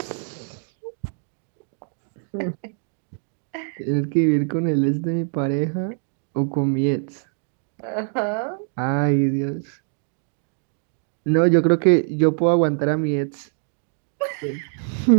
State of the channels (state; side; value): silent; left; 63 dB below the other